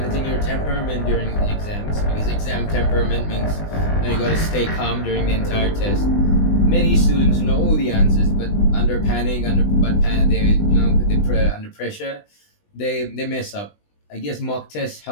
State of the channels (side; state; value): right; late; 20 ms